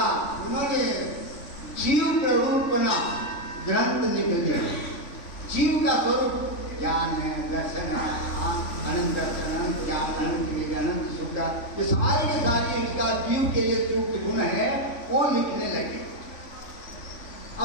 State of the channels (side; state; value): right; late; 3.5 ms